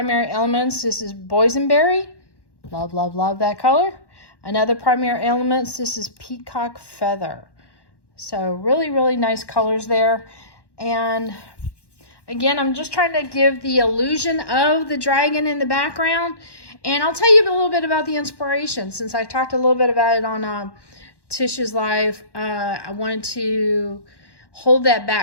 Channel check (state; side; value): late; right; 1.1 ms